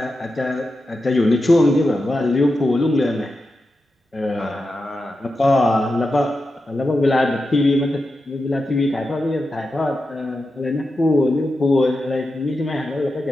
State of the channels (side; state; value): both; normal; correlation 0.90